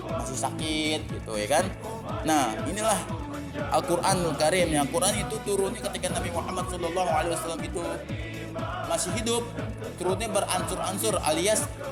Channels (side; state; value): both; identical; correlation 1.00